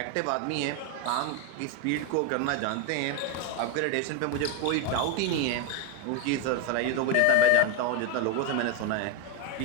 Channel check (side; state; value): both; different; correlation 0.01